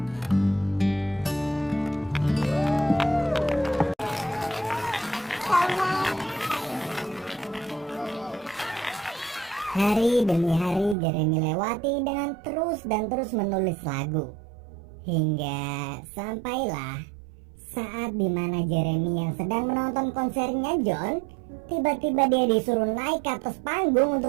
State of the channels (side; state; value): left; drops out; at 11.0 s